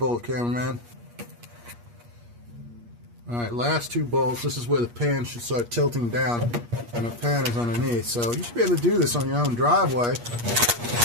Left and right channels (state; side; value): late; left; 8.4 ms